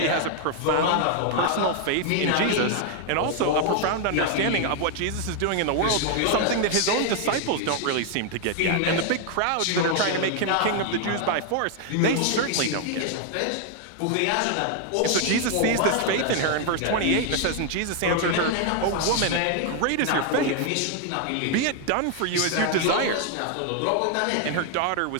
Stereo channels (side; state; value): both; different; correlation 0.00